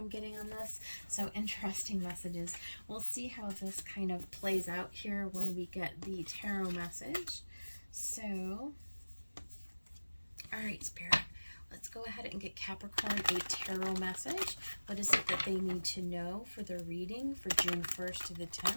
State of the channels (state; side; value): inverted; both; correlation -1.00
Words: getting on this. So interesting messages. We'll see how this kind of plays out here when we get the tarot message. So, all right, Spirit, let's go ahead and get Capricorn a tarot message. What is it that they need to know for their reading for June 1st to the